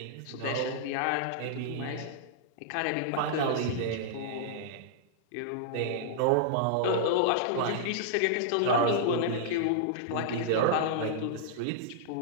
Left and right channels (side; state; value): both; different; correlation -0.02